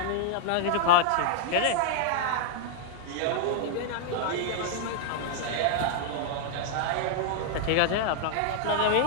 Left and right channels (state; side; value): different; both; correlation -0.01